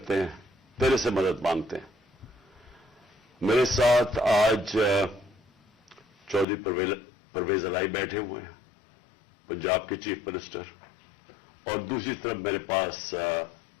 हैं, तेरे से मदद मांगते हैं। मेरे साथ आज चौधरी परवेज अलाई बैठे हुए हैं, पंजाब के चीफ मिनिस्टर, और दूसरी तरफ मेरे पास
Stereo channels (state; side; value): drops out; right; at 6.5 s